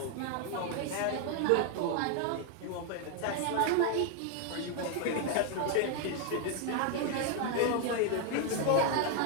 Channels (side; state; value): both; different; correlation 0.00